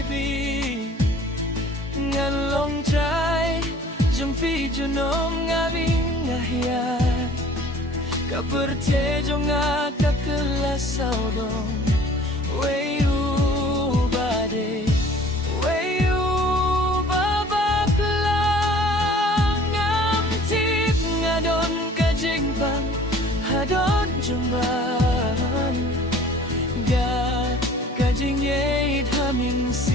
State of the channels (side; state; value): both; normal; correlation 0.50